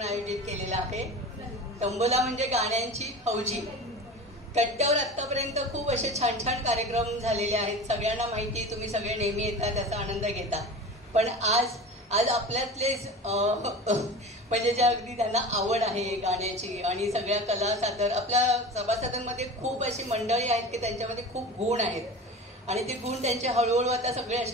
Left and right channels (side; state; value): both; normal; correlation 0.34